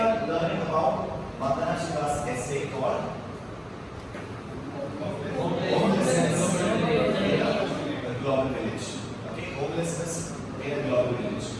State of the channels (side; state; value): both; identical; correlation 1.00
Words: learning about Vandana Shiva's essay called Homelessness in a Global Village. Okay, homelessness in a global village.